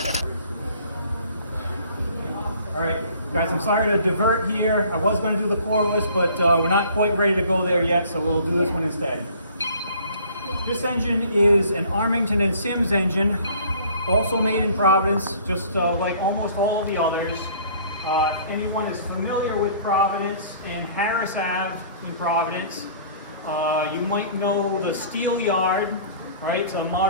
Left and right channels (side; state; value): both; inverted; correlation -0.52